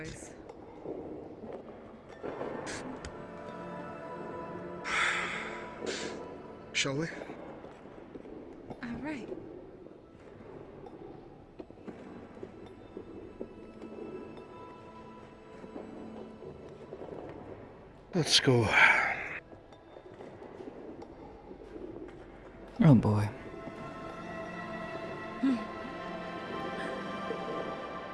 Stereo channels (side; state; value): both; identical; correlation 1.00